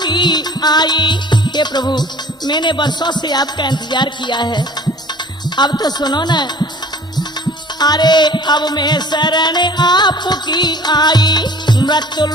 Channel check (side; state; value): both; normal; correlation 0.49